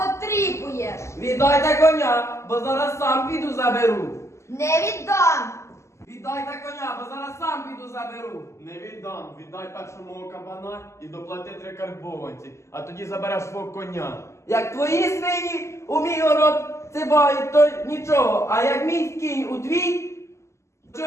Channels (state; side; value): late; right; 0.13 ms